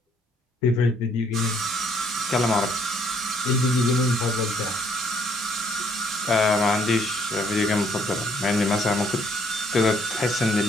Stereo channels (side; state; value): both; normal; correlation 0.66